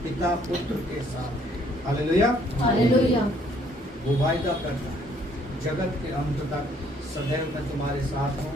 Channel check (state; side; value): normal; both; correlation 0.64